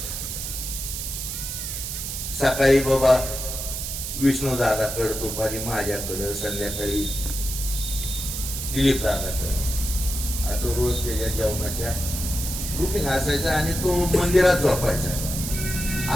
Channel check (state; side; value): noise; right; hiss, 5 dB below the sound